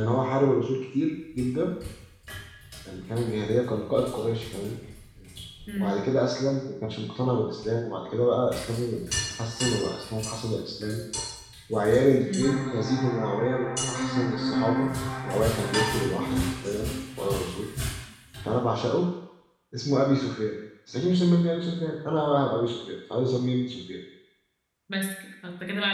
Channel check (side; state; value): both; identical; correlation 1.00